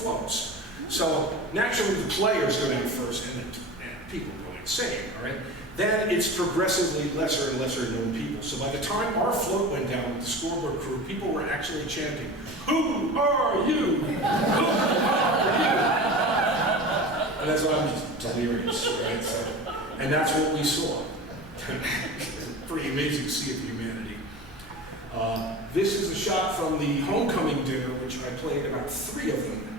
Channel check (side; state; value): both; normal; correlation 0.33